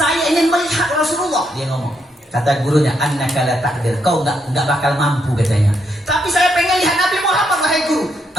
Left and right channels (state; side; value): normal; both; correlation 0.77